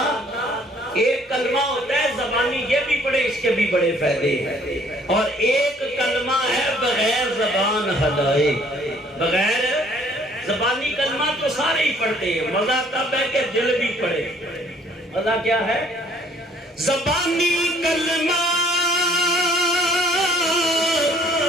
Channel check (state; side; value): normal; both; correlation 0.59